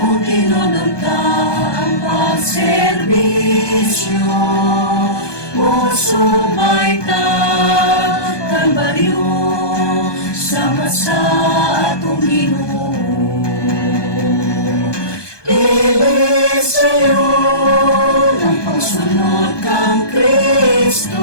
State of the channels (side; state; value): right; late; 1.2 ms